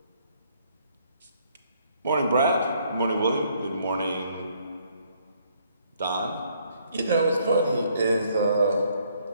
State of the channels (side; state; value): both; inverted; correlation -0.67